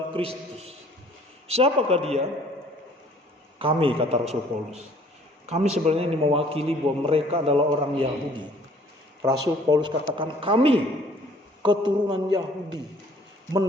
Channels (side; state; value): both; normal; correlation 0.56